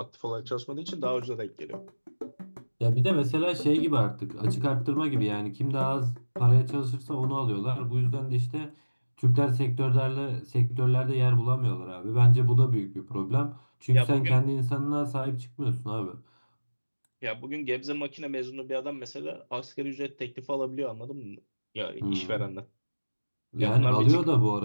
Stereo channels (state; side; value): inverted; both; correlation -1.00